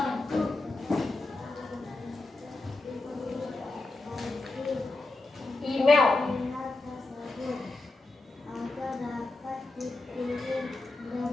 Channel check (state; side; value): quieter; right; 3.2 dB